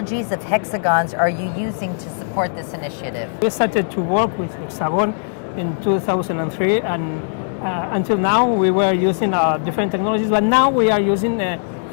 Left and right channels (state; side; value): silent; right; 66 dB below the other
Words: of Hexagon's are you using to support this initiative? We started to work with Hexagon in 2003, and until now we were using different technologies, but now we are using